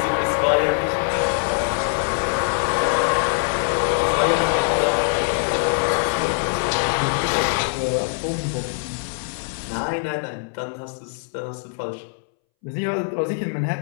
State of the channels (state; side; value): silent; right; 63 dB below the other